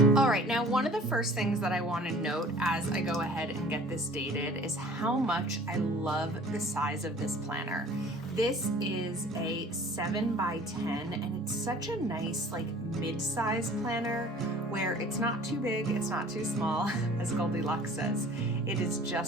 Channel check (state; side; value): normal; both; correlation 0.48